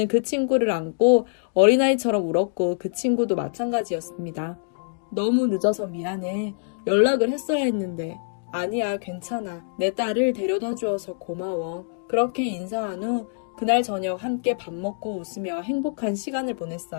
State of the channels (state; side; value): silent; right; digital silence